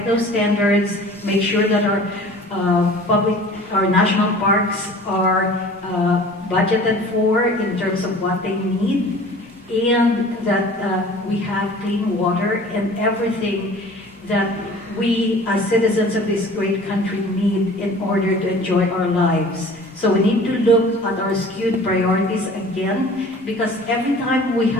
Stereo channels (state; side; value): normal; both; correlation 0.45